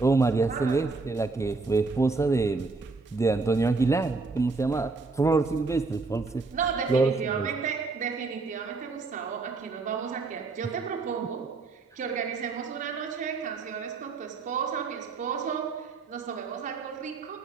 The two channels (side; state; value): left; quieter; 4.0 dB